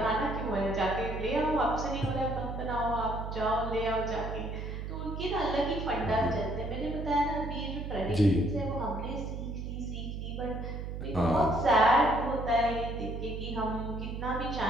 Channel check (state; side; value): noise; right; hum, 6 dB below the sound